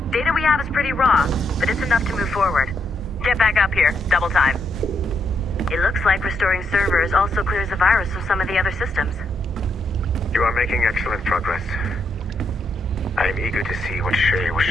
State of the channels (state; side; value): normal; both; correlation 0.78